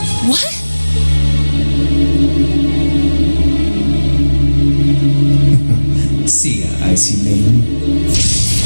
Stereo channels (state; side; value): inverted; both; correlation -1.00